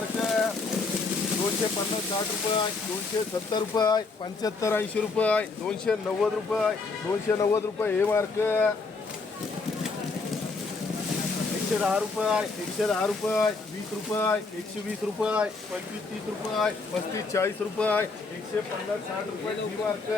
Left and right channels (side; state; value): right; quieter; 4.0 dB